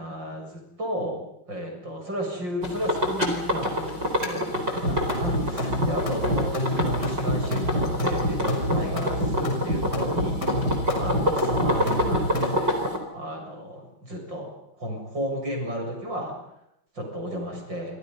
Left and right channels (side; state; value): left; late; 5.5 ms